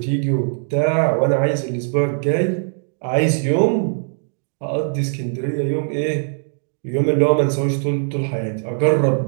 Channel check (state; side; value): silent; left; digital silence